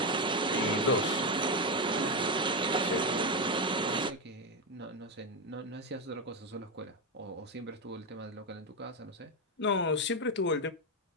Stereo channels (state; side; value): normal; both; correlation 0.09